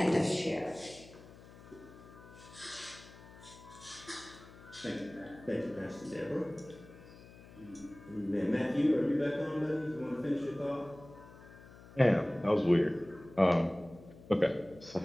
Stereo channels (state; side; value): noise; left; hum, 19 dB below the sound